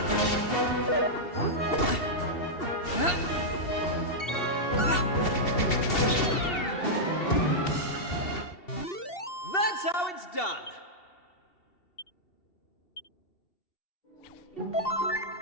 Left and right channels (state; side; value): late; right; 2.7 ms